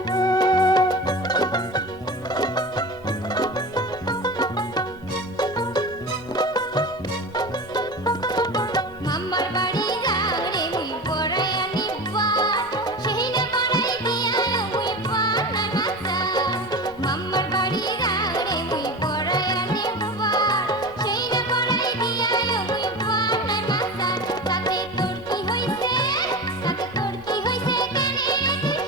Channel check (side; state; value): both; normal; correlation 0.30